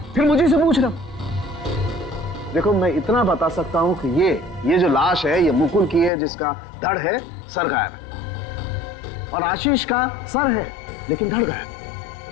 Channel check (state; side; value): drops out; right; at 6.1 s